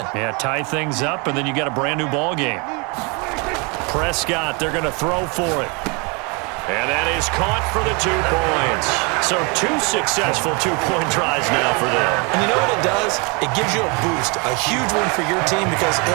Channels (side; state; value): left; quieter; 31.2 dB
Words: Yeah, tie things up, and then you got a brand-new ball game. Prescott, they're going to throw for it. And that is caught for the 2 points. So 2 successful 2-point tries now for them. And you know what it does? It gives you a boost, a huge one for your team because,